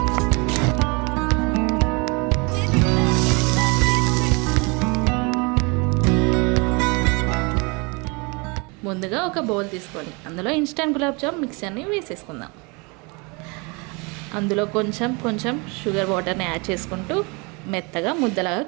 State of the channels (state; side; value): quieter; left; 29.5 dB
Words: ముందుగా ఒక బౌల్ తీసుకొని అందులో ఇన్స్టెంట్ గులాబ్ జామ్ మిక్చర్ని వేసేసుకుందాం. అందులో కొంచెం షుగర్ వాటర్ని యాడ్ చేసుకుంటూ మెత్తగా ముద్దలాగా